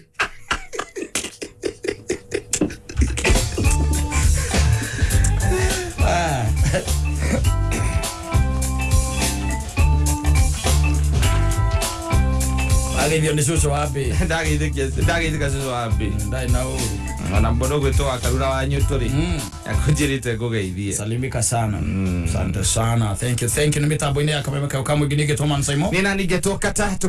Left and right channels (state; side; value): identical; both; correlation 1.00